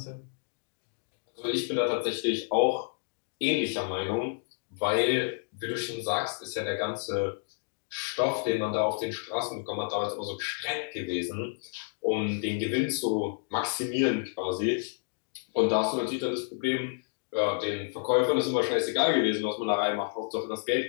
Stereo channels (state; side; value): silent; right; digital silence